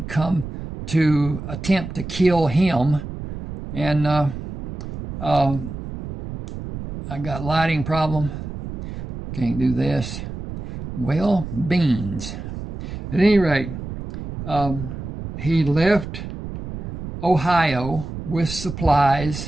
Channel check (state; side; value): noise; right; rumble, 8 dB below the sound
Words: come to attempt to kill him. And I got lighting problem. Can't do this. Well, beans. At any rate, he left Ohio with